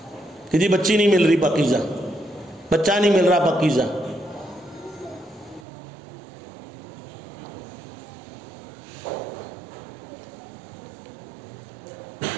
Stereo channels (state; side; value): drops out; left; at 5.7 s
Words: کہ جی بچی نہیں مل رہی پاکیزہ، بچہ نہیں مل رہا پاکیزہ.